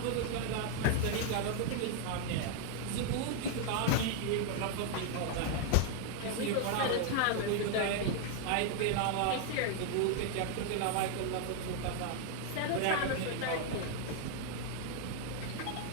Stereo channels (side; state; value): both; different; correlation 0.01